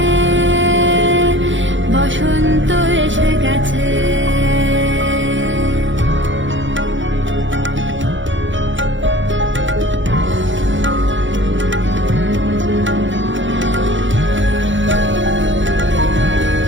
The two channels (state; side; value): late; left; 0.55 ms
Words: বসন্ত এসে গেছে।